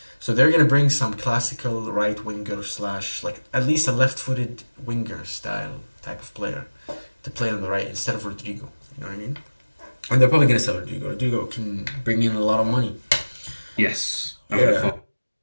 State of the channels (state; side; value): inverted; both; correlation -1.00